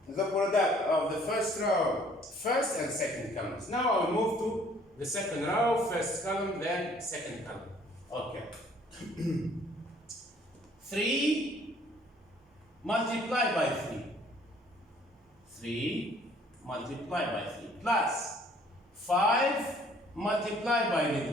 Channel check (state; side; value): normal; both; correlation 0.58